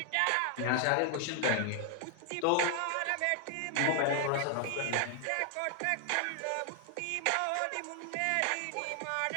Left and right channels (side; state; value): both; different; correlation 0.00